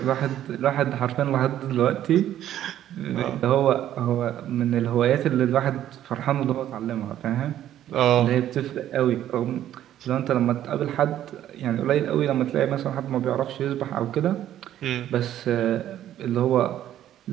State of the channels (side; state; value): left; quieter; 11.8 dB